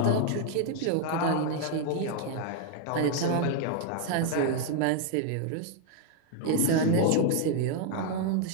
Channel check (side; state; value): both; different; correlation 0.00